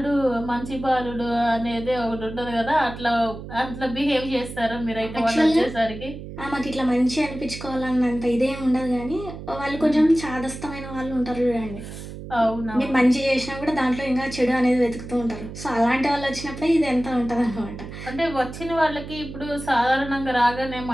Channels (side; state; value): right; noise; hum, 11 dB below the sound